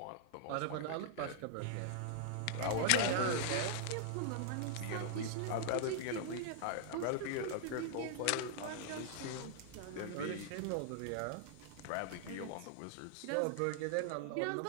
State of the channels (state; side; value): different; both; correlation -0.01